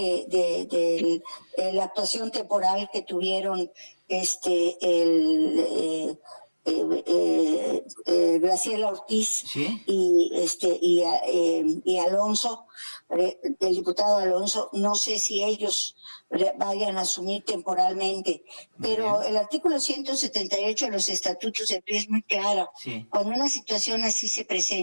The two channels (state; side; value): inverted; both; correlation -1.00